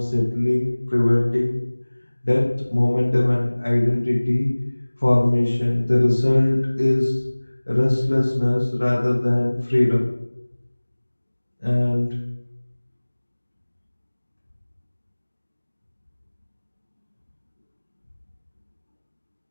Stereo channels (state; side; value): inverted; both; correlation -1.00